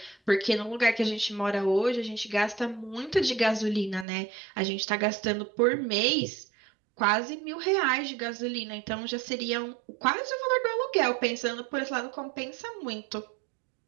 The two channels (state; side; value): drops out; left; at 4.0 s